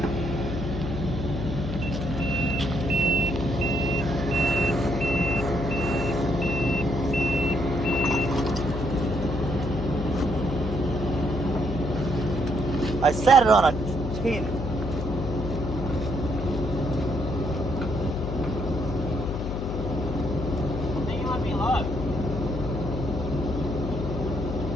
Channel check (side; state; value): left; noise; hum, 4 dB below the sound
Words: I sat it on a tin. I think it might be low.